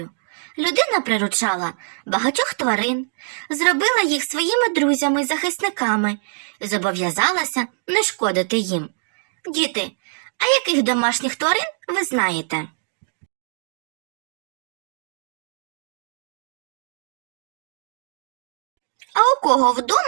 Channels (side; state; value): left; silent; digital silence